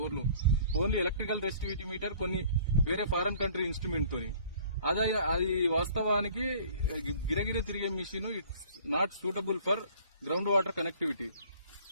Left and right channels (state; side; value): inverted; both; correlation -0.52